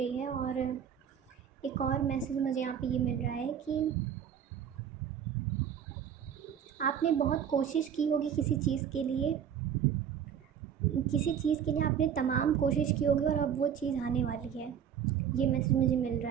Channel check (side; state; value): left; quieter; 8.6 dB